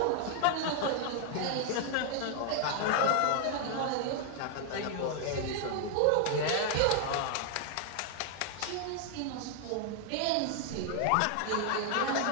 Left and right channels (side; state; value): both; different; correlation 0.00